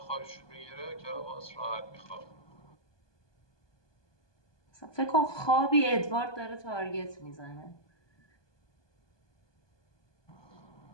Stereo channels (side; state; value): right; late; 1.2 ms